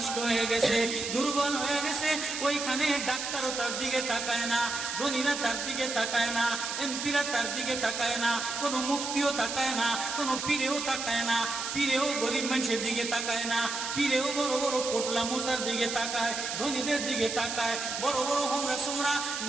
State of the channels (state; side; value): noise; right; hiss, 4 dB below the sound